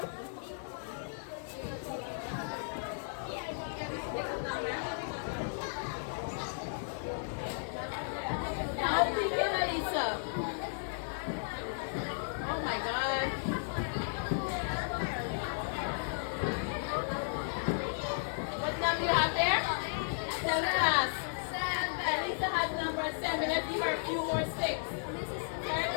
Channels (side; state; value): right; silent; digital silence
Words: Now begin, Elisa. Oh my God. What number you have there? 7 class. Elisa has number 7. Let's give her a few more sticks.